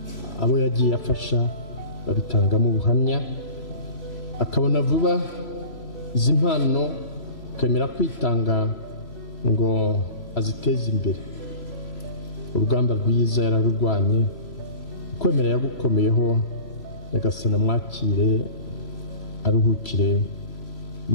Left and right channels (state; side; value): late; right; 3.0 ms